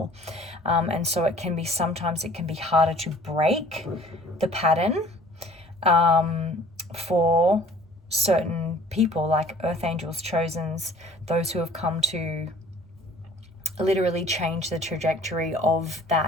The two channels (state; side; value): normal; both; correlation 0.52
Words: and so sometimes it can be harder to break the pattern for certain people, like earth angels, chosens, those who have come to literally change the trajectory of